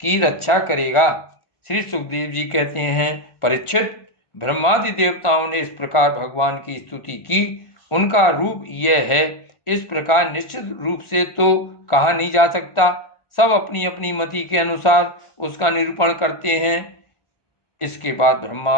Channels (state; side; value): late; right; 1.4 ms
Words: की रक्षा करेगा। श्री सुखदेव जी कहते हैं, परीक्षित, ब्रह्मादि देवताओं ने इस प्रकार भगवान की स्तुति की। उनका रूप यह है, इस प्रकार निश्चित रूप से तो कहा नहीं जा सकता। सब अपनी अपनी मति के अनुसार उसका निरूपण करते हैं। इसके बाद ब्रह्मा